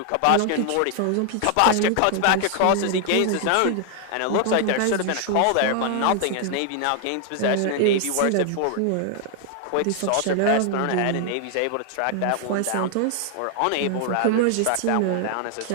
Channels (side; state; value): both; different; correlation 0.00